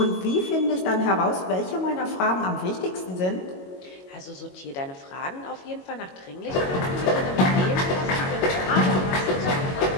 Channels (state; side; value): late; right; 22 ms